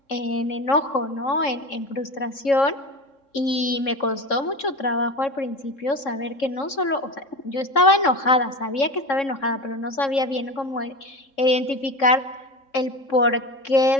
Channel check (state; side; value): late; right; 3.7 ms